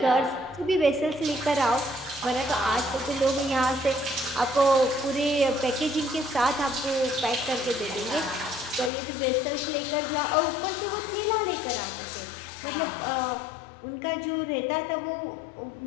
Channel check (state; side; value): drops out; right; at 8.9 s